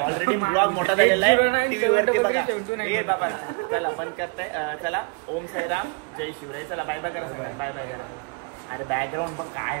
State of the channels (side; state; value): left; quieter; 32.4 dB